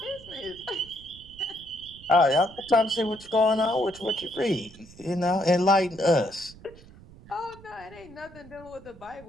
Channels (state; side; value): noise; right; rumble, 21 dB below the sound